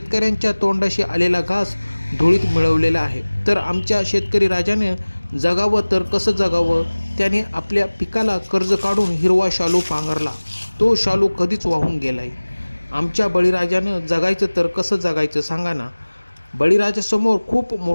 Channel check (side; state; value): both; inverted; correlation -1.00